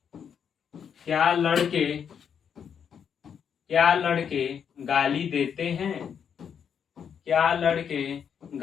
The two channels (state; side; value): quieter; right; 7.6 dB